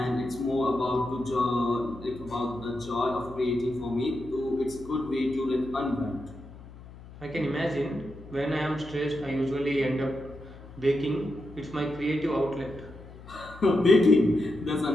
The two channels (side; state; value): left; noise; hum, 17 dB below the sound